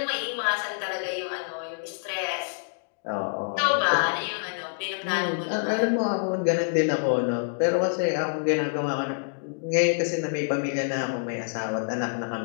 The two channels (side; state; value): right; silent; digital silence